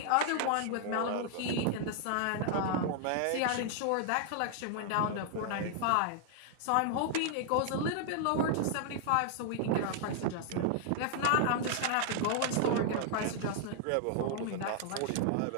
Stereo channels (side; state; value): both; different; correlation 0.00